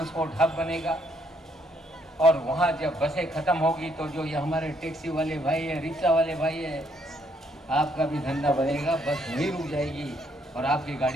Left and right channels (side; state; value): both; normal; correlation 0.71